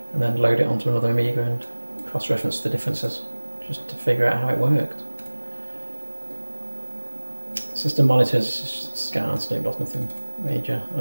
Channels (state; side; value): inverted; both; correlation -1.00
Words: and then load it onto another Amiga and cross-reference the differences, just to figure out how it worked. System monitors, scan, snip, lost nothing major.